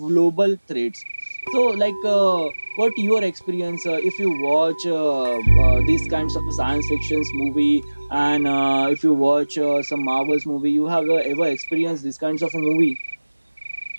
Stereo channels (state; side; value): inverted; both; correlation -1.00